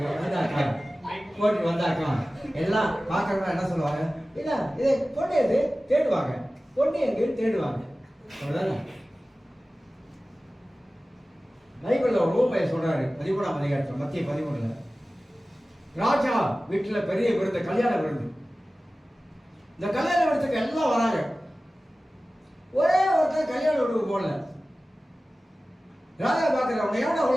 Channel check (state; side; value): normal; both; correlation 0.96